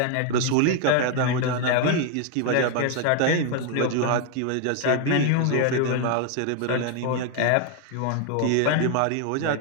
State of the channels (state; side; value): different; both; correlation 0.01